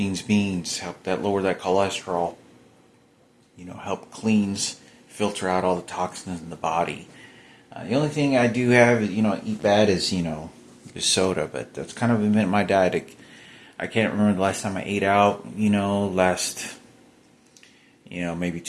Help lower that cholesterol. Help filter out all the toxins in the body. The only thing I do have, eat bad is soda, but that's kind of been my diet. I can't remember the last time I ate out, maybe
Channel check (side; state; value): both; identical; correlation 1.00